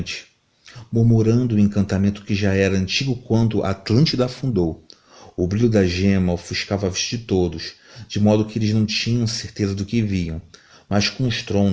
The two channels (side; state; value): both; identical; correlation 1.00